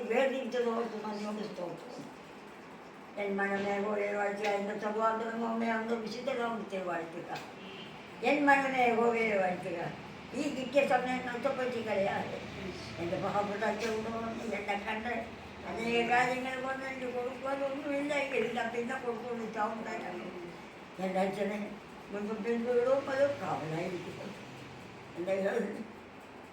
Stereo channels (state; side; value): identical; both; correlation 1.00